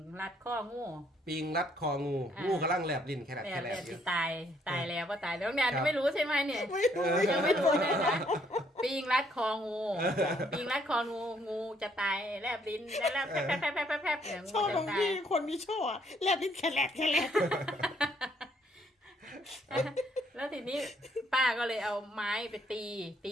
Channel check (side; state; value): both; normal; correlation 0.68